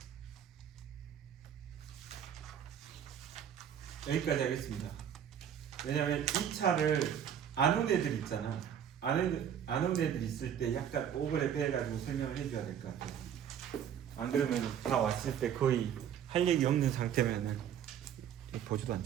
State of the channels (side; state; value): left; quieter; 9.1 dB